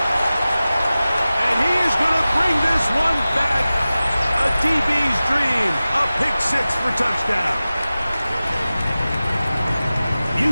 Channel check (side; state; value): both; inverted; correlation -0.96